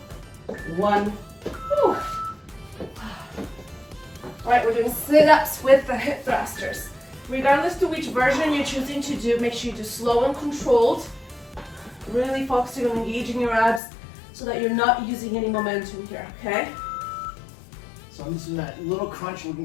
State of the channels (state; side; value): drops out; right; at 13.8 s